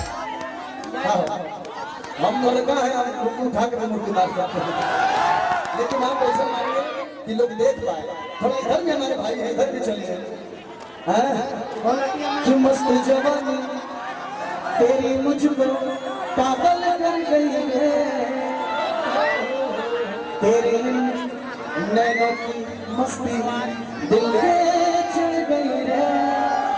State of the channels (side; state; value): both; identical; correlation 1.00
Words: हम लड़का है, हम मुर्गी उठा के मुर्गी मार सकते हैं, लेकिन आप ऐसा मानिए कि लोग देख पाए। थोड़ा इधर भी हमारे भाई है, इधर भी चलिए। कि मस्त जवानी तेरी मुझको पागल कर गई है, तेरी नैनों की मस्ती दिल पे चढ़ गई है।